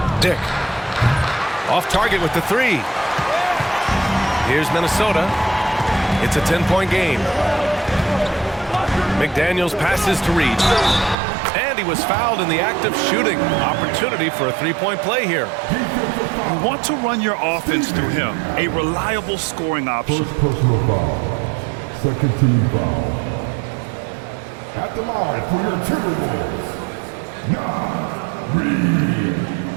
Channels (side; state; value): left; drops out; at 11.2 s